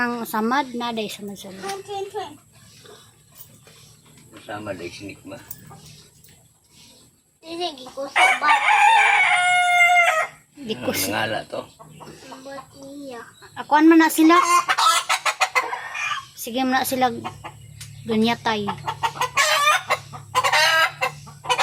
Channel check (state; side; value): identical; both; correlation 1.00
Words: samad, naday samad. Train. Sama dahil sinik ma. Sige ko sa bata. Di ko Nangala to. Ba't niya? akuan man na sila. Sige man na sila gunyatay.